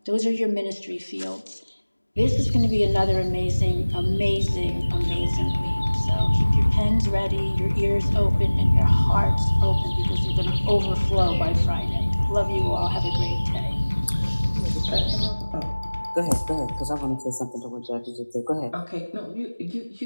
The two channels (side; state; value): both; inverted; correlation -1.00